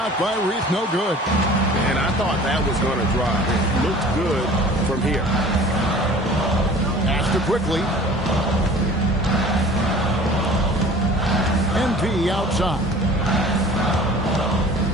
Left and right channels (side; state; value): both; normal; correlation 0.45